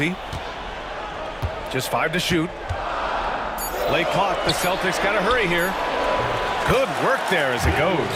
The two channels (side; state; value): both; identical; correlation 1.00